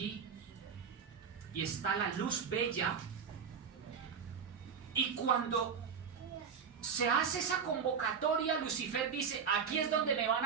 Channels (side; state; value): left; quieter; 6.6 dB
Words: y está la luz bella, y cuando se hace esa convocatoria, Lucifer dice: aquí es donde me van